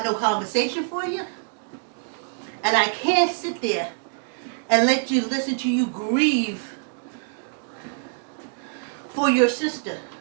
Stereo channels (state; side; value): silent; left; digital silence